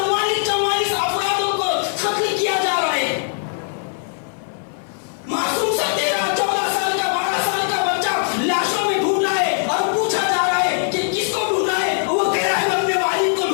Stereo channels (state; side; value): silent; right; 55 dB below the other